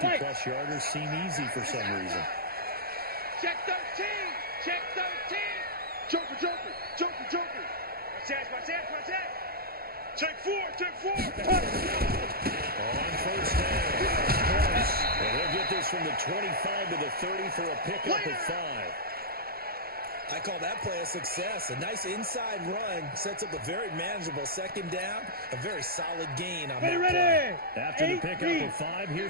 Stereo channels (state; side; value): late; left; 0.44 ms